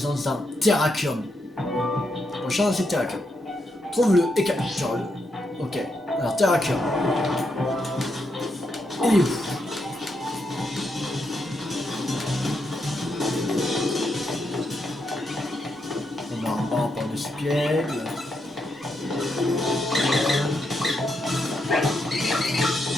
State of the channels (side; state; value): both; normal; correlation 0.81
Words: d'un Terrakium. Prochain c'est Terrakium. Trouve-le et capture-le. Ok. Alors Terrakium. Il est où? On a un banc par dessus pied.